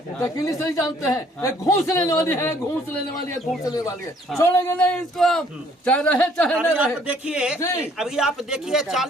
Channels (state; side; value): normal; both; correlation 0.61